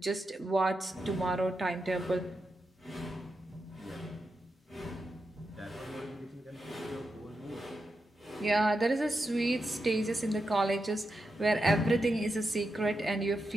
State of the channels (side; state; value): both; normal; correlation 0.87